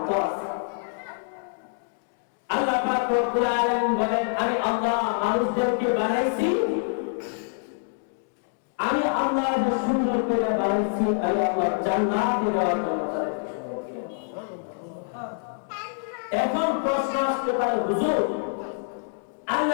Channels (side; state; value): right; silent; digital silence